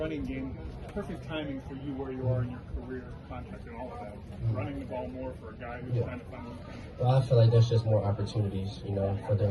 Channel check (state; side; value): identical; both; correlation 1.00